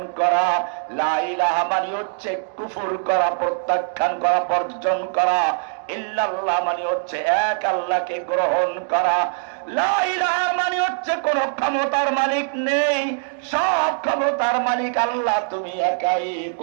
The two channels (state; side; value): silent; left; digital silence